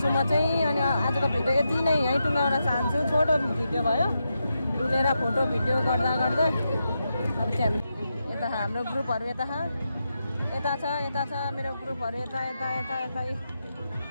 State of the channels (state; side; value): inverted; both; correlation -0.86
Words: छु म चाहिँ अनि आजको भिडियो यति नै यहीँ टुङ्गाउन चाहन्छु छोटो भिडियो भयो डुलेर फोटो भिडियो गर्दा गर्दै अब चाहिँ हामी यता हाम्रो ग्रुपहरू यता छ मेरो ग्रुपहरू यता